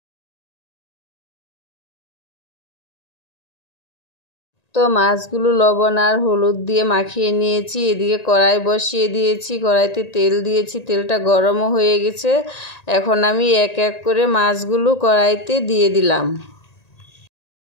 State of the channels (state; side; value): late; right; 1.8 ms